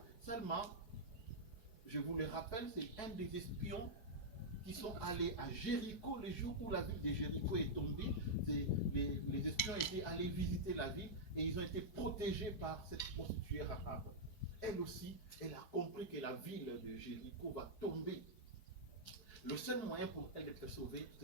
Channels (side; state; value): right; late; 4.7 ms